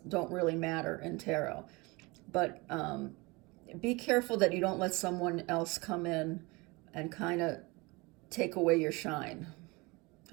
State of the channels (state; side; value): quieter; left; 25.2 dB